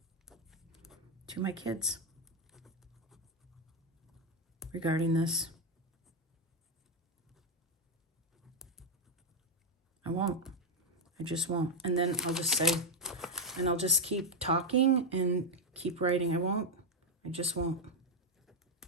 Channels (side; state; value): both; normal; correlation 0.05